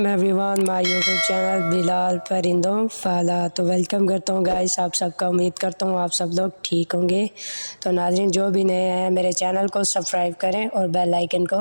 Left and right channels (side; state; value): both; inverted; correlation -1.00